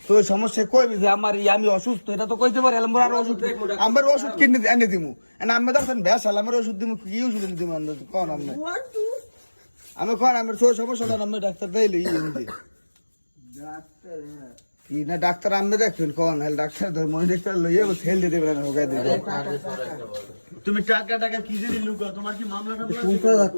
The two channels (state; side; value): inverted; both; correlation -1.00